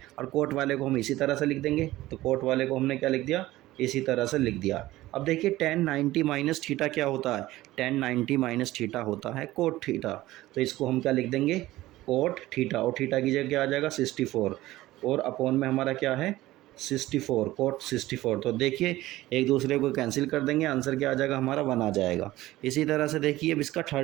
और कोट वाले को हम इसी तरह से लिख देंगे। तो कोट वाले को हमने क्या लिख दिया, इसी तरह से लिख दिया। अब देखिए, 10 90 माइनस थीटा क्या होता है, 10 90 माइनस थीटा होता है कोट थीटा। तो इसको हम क्या लिख देंगे, कोट थीटा, और थीटा की जगह क्या आ जाएगा 64, और अपॉन में हमारा क्या है 64, कोट 64। तो देखिए, एक दूसरे को कैंसिल कर देंगे, आंसर क्या आ जाएगा हमारा 1 आ जाएगा। इसी तरह से देखिए, अब इसका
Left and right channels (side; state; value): left; quieter; 16.8 dB